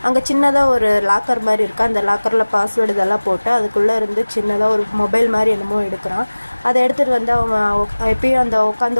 அங்கே சின்னதாக ஒரு லாக்கர் மாதிரி இருக்குது. அந்த லாக்கரில் பாஸ்வேர்டு இதெல்லாம் போட்டு அதுக்குள்ளே இருந்து சின்னதாக ஒரு மொபைல் மாதிரி என்னமோ எடுக்கிறான். அதை எடுத்துகிட்டு வந்து அவன் எப்பயும் அந்த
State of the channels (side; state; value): both; inverted; correlation -1.00